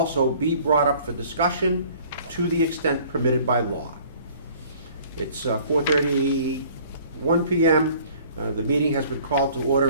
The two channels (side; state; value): both; inverted; correlation -0.53